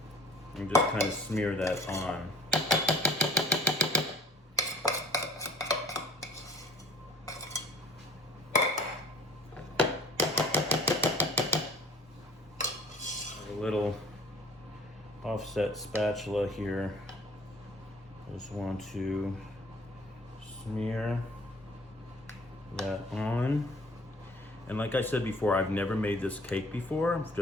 and just kind of smear that on. A little offset spatula here. Just want to smear that on. And like I said before, I've never made this cake before. I'm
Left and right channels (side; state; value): both; normal; correlation 0.48